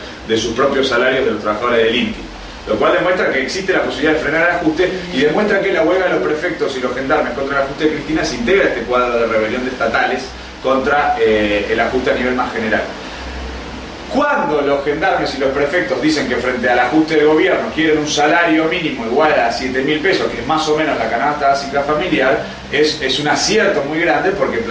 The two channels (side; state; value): both; identical; correlation 1.00